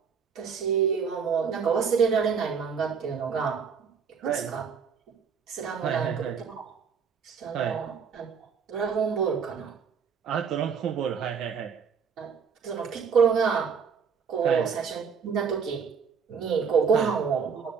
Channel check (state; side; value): quieter; left; 6.3 dB